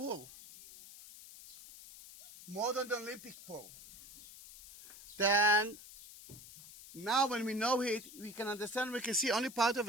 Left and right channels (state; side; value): noise; left; hiss, 17 dB below the sound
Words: More than the Olympic pool. Then, now when we know it, we can understand, we can see only part of